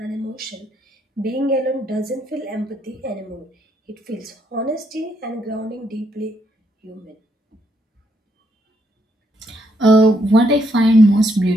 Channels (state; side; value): normal; both; correlation 0.74